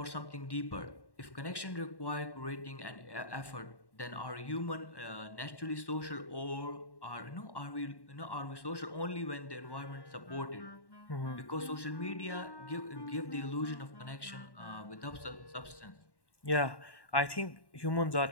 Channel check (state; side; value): late; right; 1.1 ms